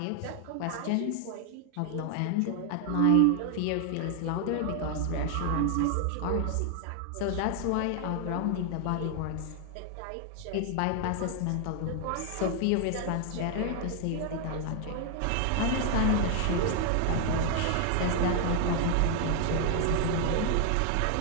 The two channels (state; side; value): different; both; correlation 0.00